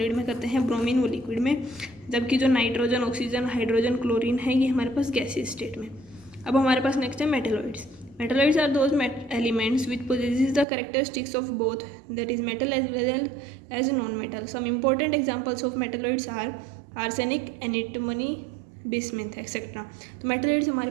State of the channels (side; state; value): left; drops out; at 10.7 s